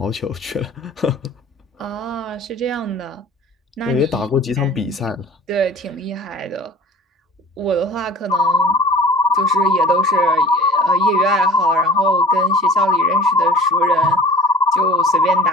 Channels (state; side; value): normal; both; correlation 0.43